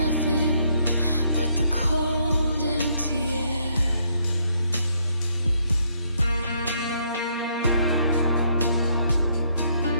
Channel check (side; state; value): both; inverted; correlation -0.71